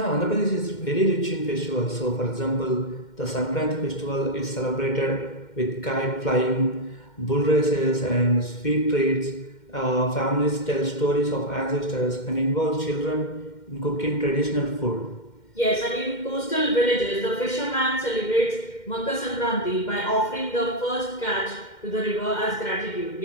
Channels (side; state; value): right; late; 2.1 ms